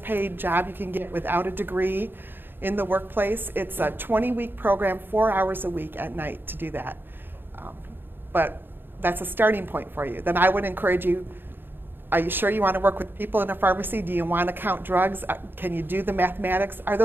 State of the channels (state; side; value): late; left; 0.097 ms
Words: paid job you can get without a degree in the workplace. It's a 20-week program, 4 hours a week at night to do that. But that's a starting point for you. Then I would encourage you, are you sure you want to work with people in a pharmacy? Do you want to count drugs? Can you do the mathematics? Are